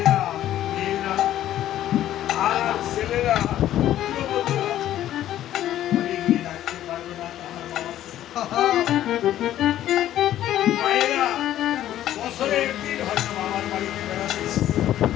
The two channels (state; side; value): quieter; right; 12.5 dB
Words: মেয়েরা আর ছেলেরা রাখতে পারবে না মায়েরা বছরে একদিন হয়তো বাবার বাড়িতে বেড়াতে